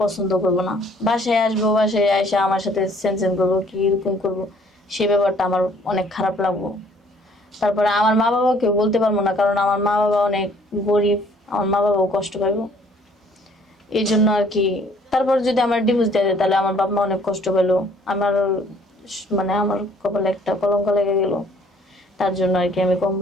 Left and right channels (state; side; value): normal; both; correlation 0.59